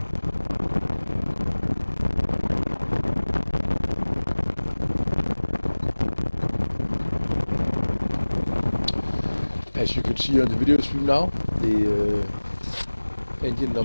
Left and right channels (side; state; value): both; inverted; correlation -1.00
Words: As you can see on the video stream now, the engine